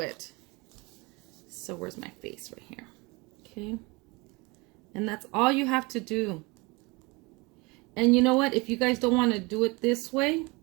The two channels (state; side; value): quieter; left; 26.1 dB